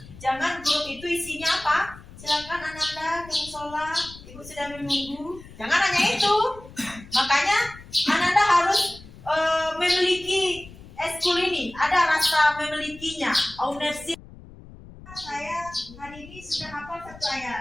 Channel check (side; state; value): left; noise; rumble, 18 dB below the sound